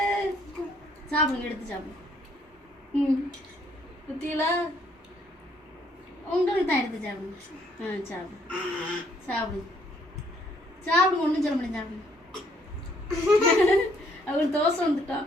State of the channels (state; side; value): normal; both; correlation 0.66